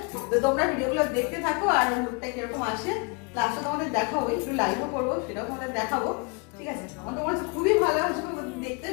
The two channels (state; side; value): quieter; right; 32.4 dB